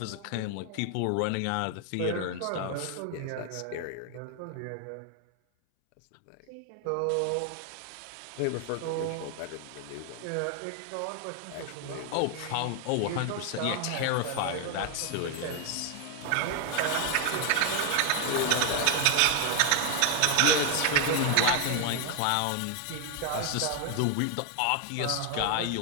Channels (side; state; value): both; different; correlation 0.00